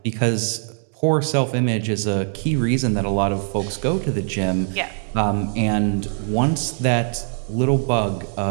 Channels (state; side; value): silent; left; digital silence